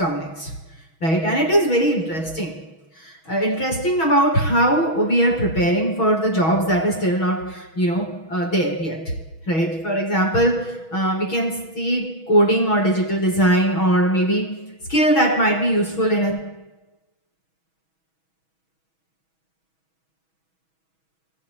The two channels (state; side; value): late; right; 6.2 ms